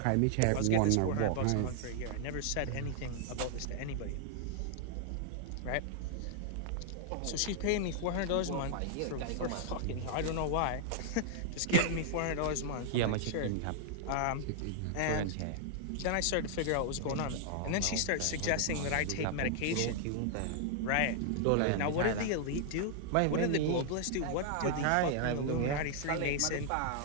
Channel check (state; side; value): different; both; correlation -0.01